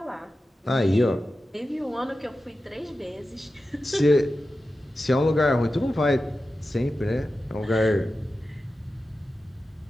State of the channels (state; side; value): normal; both; correlation 0.93